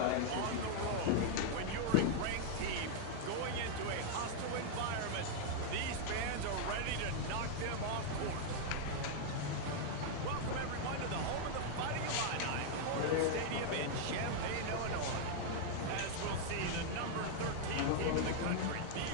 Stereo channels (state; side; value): different; both; correlation -0.01